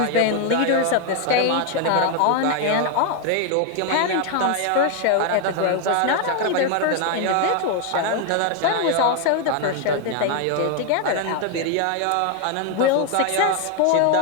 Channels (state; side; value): different; both; correlation 0.00